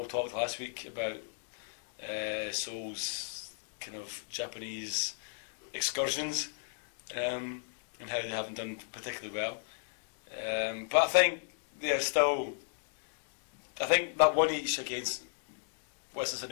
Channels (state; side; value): silent; right; digital silence